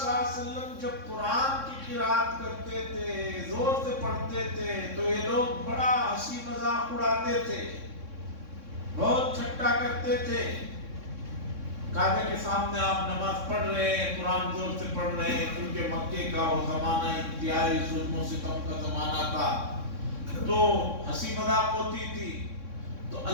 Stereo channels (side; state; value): left; late; 3.6 ms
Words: اللہ علیہ وسلم جب قرآن کی قرات کرتے تھے، زور سے پڑھتے تھے، تو یہ لوگ بڑا ہنسی مذاق اڑاتے تھے، بہت ٹھٹا کرتے تھے۔ کعبے کے سامنے آپ نماز پڑھ رہے ہیں، قرآن زور سے پڑھ رہے ہیں، کیونکہ مکے کا وہ زمانہ انتہائی ظلم و ستم کا زمانہ تھا، تو ہنسی مذاق ہوتی تھی۔ تو